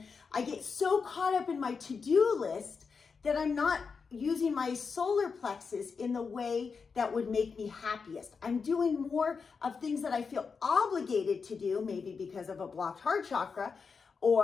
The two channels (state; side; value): quieter; right; 5.3 dB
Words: I get so caught up in my to-do list that I'm not using my solar plexus in the way that would make me happiest. I'm doing more of things that I feel obligated to do, maybe because of a blocked heart chakra,